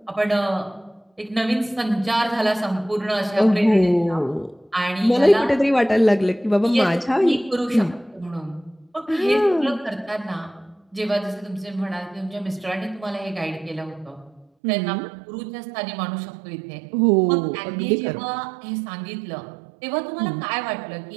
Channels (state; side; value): drops out; left; at 14.5 s